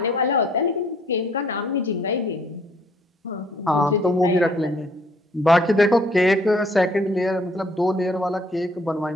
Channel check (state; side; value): normal; both; correlation 0.62